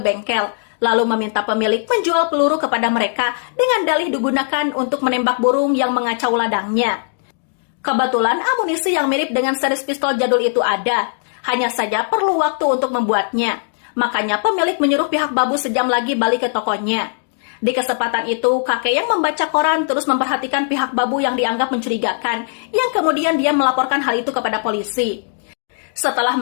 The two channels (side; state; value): right; silent; digital silence